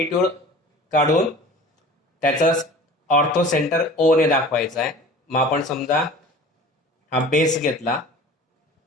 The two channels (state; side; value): normal; both; correlation 0.42